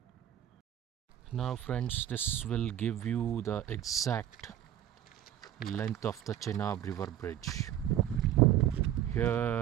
Now friends, this will give you the exact length of the Chenab River Bridge.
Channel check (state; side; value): quieter; left; 11.5 dB